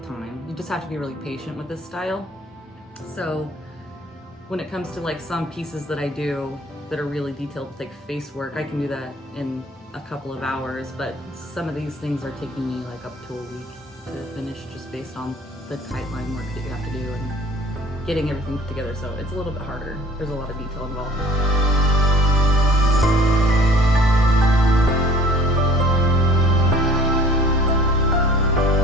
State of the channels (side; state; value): both; normal; correlation 0.51